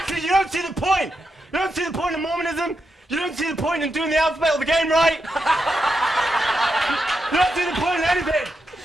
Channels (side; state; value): both; normal; correlation 0.85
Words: you don't see the point! You don't see the point in Mormonism? You don't see the point in doing the alphabet of the game right? You don't see the point in anything!